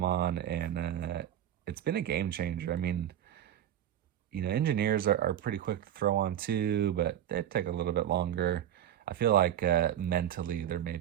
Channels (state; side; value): quieter; left; 11.0 dB